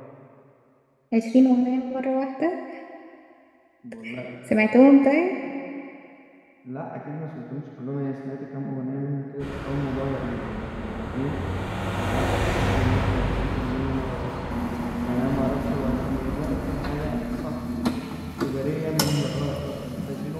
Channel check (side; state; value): both; identical; correlation 1.00